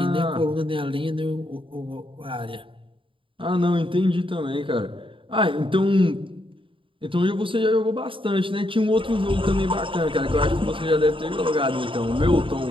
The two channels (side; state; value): left; late; 0.25 ms